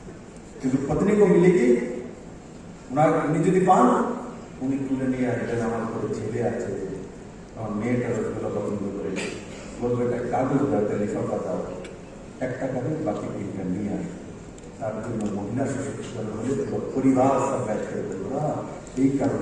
কিন্তু पत्नी को मिलेगी উনি যদি পান উনি তুলে নিয়ে আসবেন, আমার কোনো ছেলে আছে, আমার মেয়েটা রসগোল্লা পছন্দ করে, বলবে একটা কাগজ দাও, লিফাফা দাও, 1 টাকা দিয়ে বাকি 3টা নিয়ে আসবে। তার জন্য মহিলা সশক্তিকরণ হলে পরিবার সব ব্যাচ করে দেবো। এই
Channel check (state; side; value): identical; both; correlation 1.00